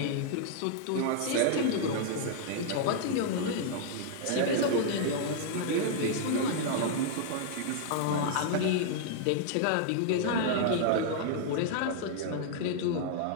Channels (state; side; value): different; both; correlation -0.01